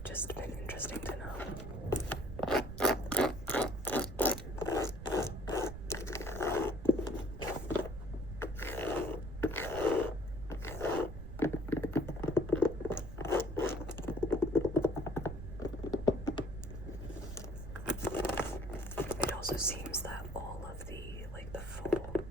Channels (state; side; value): noise; right; rumble, 9 dB below the sound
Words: just been interesting to know. It also seems that all of the, like the full,